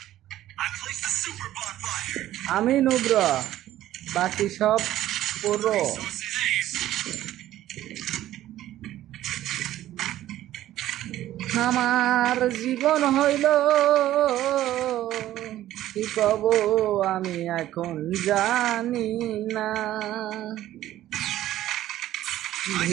I place the super bonfire. আমি নুব্র, বাকি সব পুরো। আমার জীবন হইল কি কব আমি এখন জানি না।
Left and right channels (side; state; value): left; quieter; 13.7 dB